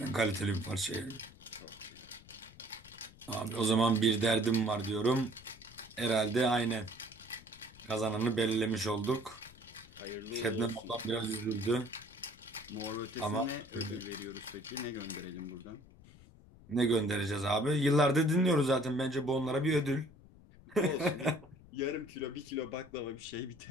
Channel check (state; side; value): noise; left; rumble, 22 dB below the sound